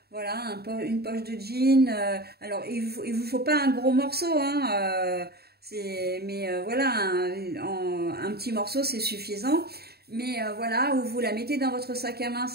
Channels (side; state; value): left; late; 0.46 ms